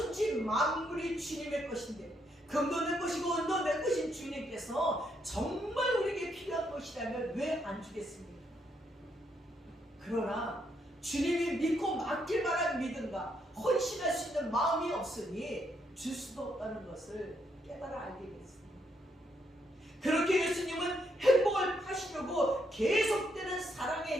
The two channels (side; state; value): both; normal; correlation 0.76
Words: 만물이 주님의 것인데, 금도 내 것이고 은도 내 것인 주님께서 정말 우리에게 필요한 것이라면 왜 안 주겠습니까? 그러나 주님이 믿고 맡길 만한 믿음과 헌신할 수 있는 마음이 없으니 줄 수도 없다는 것을 깨달아 알게 됐습니다. 그렇게 예수님은 행복을 파시려고 계속되는